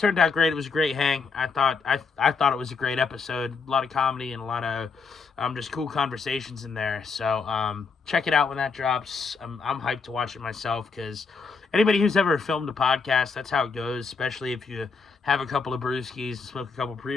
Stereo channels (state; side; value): quieter; right; 4.8 dB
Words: out great. It was a great hang. I thought it was a great episode. A lot of comedy and a lot of just cool conversations in there. So check it out when that drops. I'm hyped to watch it myself because anybody who's ever filmed a podcast, that's how it goes, especially if you have a couple of brewskis and smoke a couple